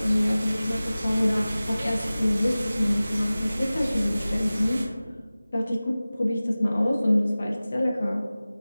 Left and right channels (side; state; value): both; inverted; correlation -0.98